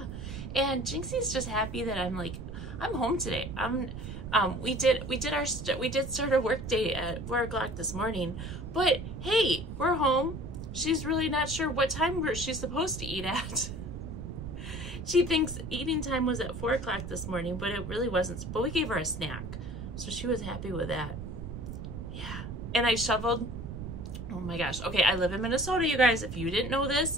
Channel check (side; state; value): right; noise; rumble, 8 dB below the sound